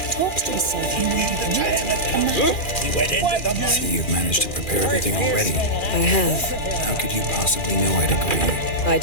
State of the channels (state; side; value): late; right; 2.4 ms